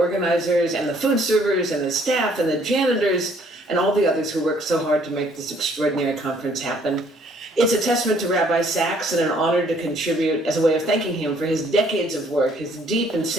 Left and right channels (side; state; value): both; normal; correlation 0.62